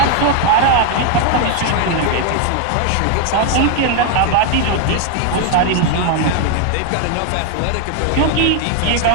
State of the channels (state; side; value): different; both; correlation 0.01